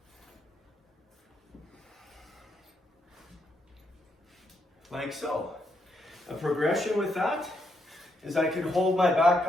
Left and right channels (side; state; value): both; normal; correlation 0.78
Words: Like so. A progression with that is I can hold my